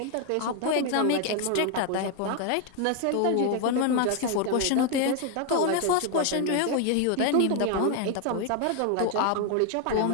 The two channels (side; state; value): both; different; correlation 0.01